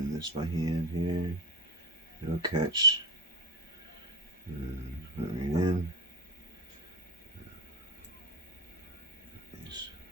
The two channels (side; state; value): both; normal; correlation 0.21